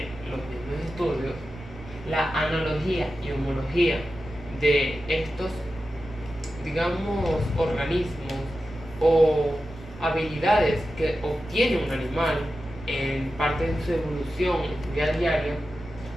los mismos estudios, la analogía y homología de estos, digamos, organismos o habilidades que obtiene un animal en parte de su evolución en su vida diaria,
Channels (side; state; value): right; noise; rumble, 16 dB below the sound